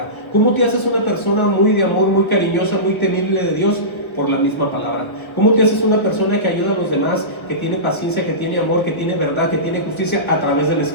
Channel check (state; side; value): late; right; 1.1 ms